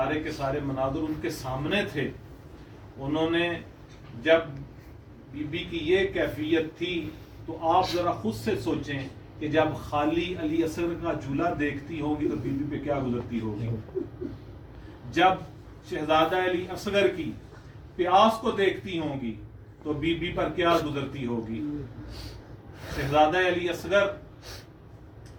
کے سارے مناظر ان کے سامنے تھے، انہوں نے جب بی بی کی یہ کیفیت تھی، تو آپ ذرا خود سے سوچیں کہ جب خالی علی اصغر کا جھولا دیکھتی ہوگی تو بی بی پہ کیا گزرتی ہوگی، جب شہزادہ علی اصغر کی پیاس کو دیکھتی ہوں گی تو بی بی پر کیا گزرتی ہوگی۔ شہزادہ علی اصغر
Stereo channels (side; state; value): both; identical; correlation 1.00